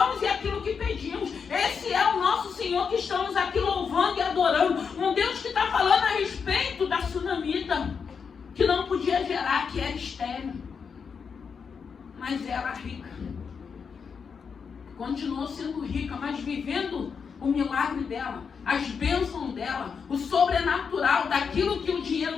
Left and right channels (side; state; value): right; quieter; 6.1 dB